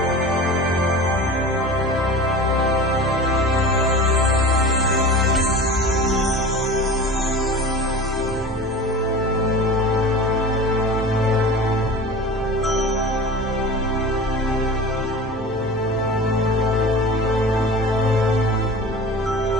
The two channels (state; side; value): normal; both; correlation 0.35